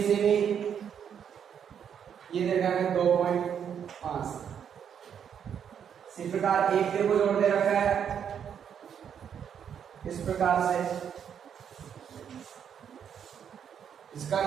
सेमी, ये देगा 2.5। इसी प्रकार एक को जोड़ दे रखा है इस प्रकार से, इसका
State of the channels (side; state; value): left; quieter; 8.2 dB